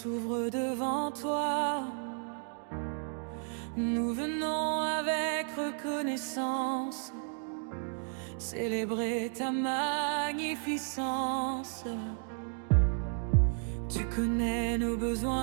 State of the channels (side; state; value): left; silent; 56 dB below the other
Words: devant toi. Nous venons avec reconnaissance célébrer ta magnificence. Tu connais nos